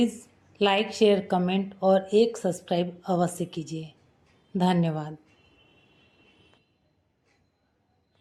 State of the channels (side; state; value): both; identical; correlation 1.00